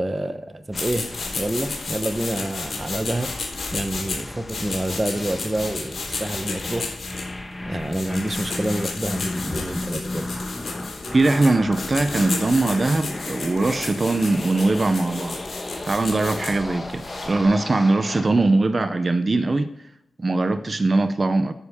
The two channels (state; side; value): normal; both; correlation 0.95